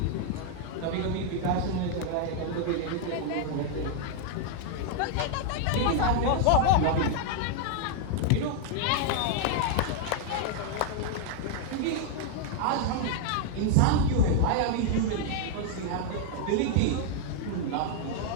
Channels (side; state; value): both; different; correlation 0.00